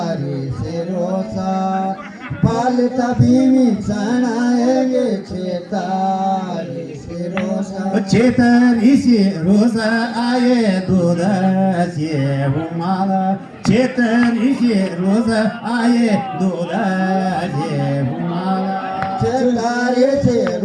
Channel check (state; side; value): identical; both; correlation 1.00